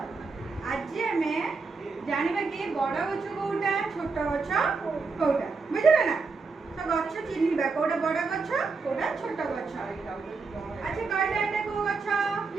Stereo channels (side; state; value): left; quieter; 4.4 dB